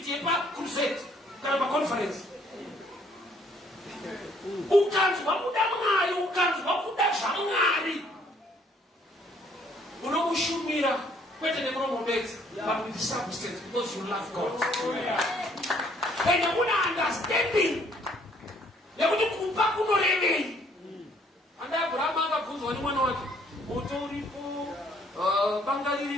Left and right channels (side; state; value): both; normal; correlation 0.64